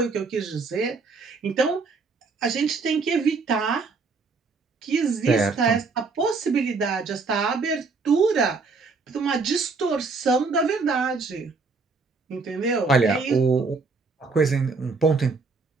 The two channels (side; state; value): left; quieter; 4.3 dB